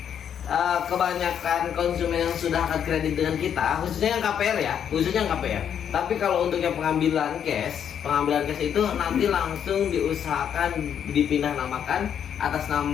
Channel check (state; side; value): quieter; right; 8.7 dB